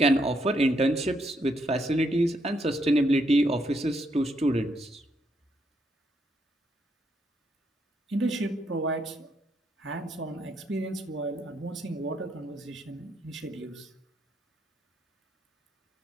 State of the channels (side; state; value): both; normal; correlation 0.76